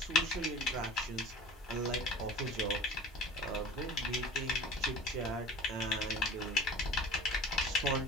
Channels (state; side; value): normal; both; correlation 0.41